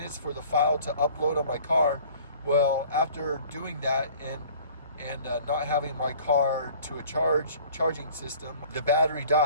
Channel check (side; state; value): both; inverted; correlation -0.49